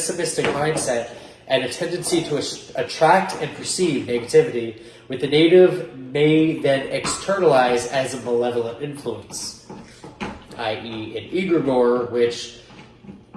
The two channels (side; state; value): both; identical; correlation 1.00